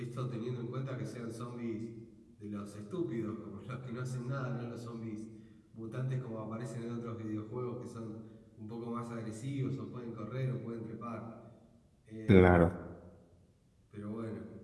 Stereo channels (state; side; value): identical; both; correlation 1.00